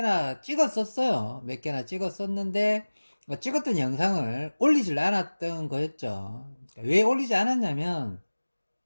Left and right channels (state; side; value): inverted; both; correlation -1.00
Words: 찍었었어요. 몇 개나 찍었었는데 찍었던 영상을 올리질 않았던 거였죠. 왜 올리지 않았냐면